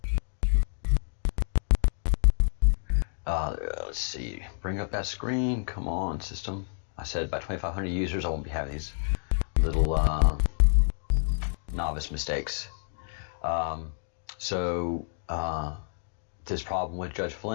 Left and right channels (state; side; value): silent; right; digital silence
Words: let's see, bring up that screen. Come on, system. I said by 2,500 users, I won't be having these little novice mistakes. This problem with Judge